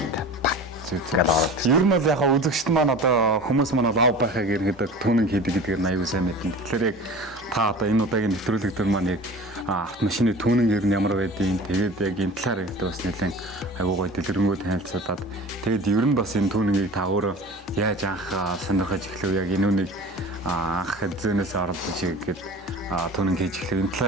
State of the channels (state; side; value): normal; both; correlation 0.38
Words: Ер нь бол яг үзэгчд маань одоо хүмүүс маань лав байхаг ерөнхийдөө түүнэн хийдэг гэдгээр нь аюул сайн мэднэ. Тэгэхээр яг та одоо энэ удаагийн нэвтрүүлэг дээр маань яг автомашины түүнэн ер нь ямар байдгийг тэгээд яг энэ талаар ихтэй бас нэлээд аюул гой дэлгэрэнгүй танилцуулаад тэгээд ер нь бас энэ түүннийг та өөрөө яаж анх сонирхож эхлэв яг энэ үнийг анх зөнөөс оролдож игээд түүнэн хийж эхлэв энэ